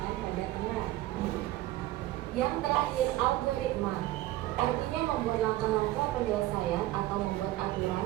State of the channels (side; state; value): left; quieter; 16.3 dB